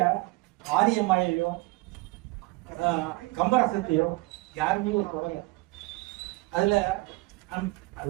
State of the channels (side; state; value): left; quieter; 23.1 dB